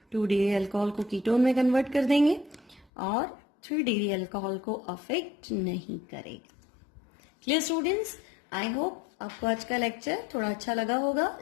2 डिग्री अल्कोहल को कीटोन में कन्वर्ट कर देंगे और 3 डिग्री अल्कोहल को अफेक्ट नहीं करेगा। Clear students? आई होप आपको आज का लेक्चर थोड़ा अच्छा लगा होगा।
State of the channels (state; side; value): drops out; right; at 2.9 s